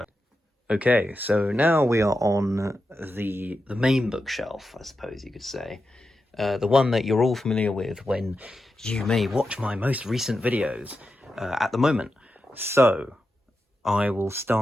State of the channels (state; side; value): normal; both; correlation 0.89